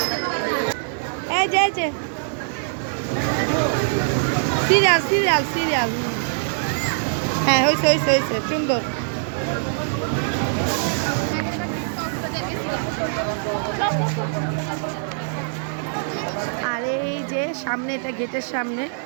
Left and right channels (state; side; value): silent; left; digital silence